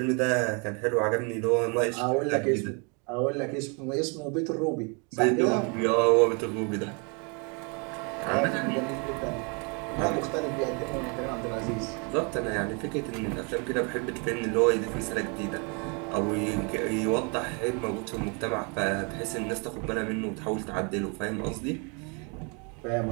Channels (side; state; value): left; quieter; 34.1 dB